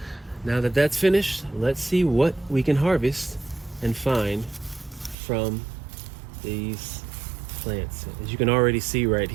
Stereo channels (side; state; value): left; drops out; at 5.2 s